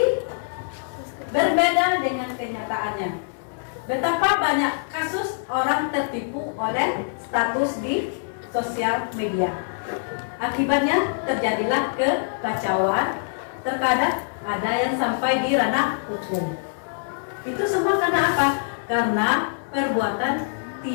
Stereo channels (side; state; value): right; silent; 60 dB below the other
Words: berbeda dengan kenyataannya. Betapa banyak kasus orang tertipu oleh status di sosial media. Akibatnya terjadilah kekacauan, terkadang ada yang sampai di ranah hukum. Itu semua karena apa? Karena perbuatan